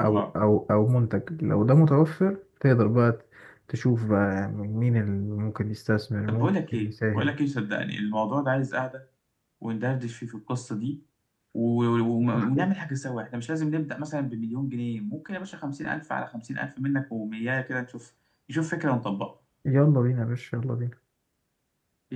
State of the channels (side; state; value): both; identical; correlation 1.00